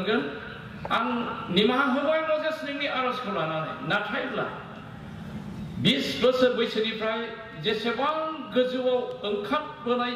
आं निमाहा होबाय मजेस नोंनि आर'जखौ लानानै नाथायब्ला 20 बोसोर बैसोनिफ्राय जेसेबां गोजौआव ओंखारबोनाय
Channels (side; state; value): both; identical; correlation 1.00